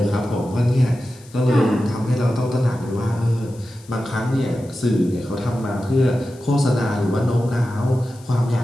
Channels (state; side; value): noise; left; hiss, 25 dB below the sound